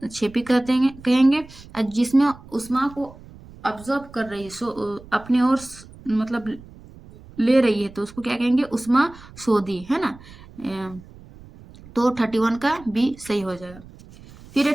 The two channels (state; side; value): noise; right; rumble, 20 dB below the sound